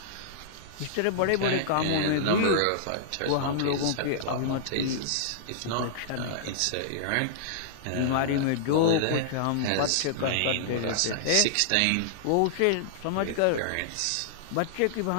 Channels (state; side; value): different; both; correlation -0.02